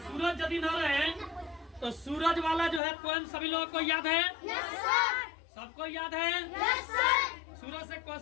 यदि न रहे तो सूरज वाला जो है पोएम सभी लोगों को याद है? yes, सबको याद है? yes, सूरज से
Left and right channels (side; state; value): right; drops out; at 2.8 s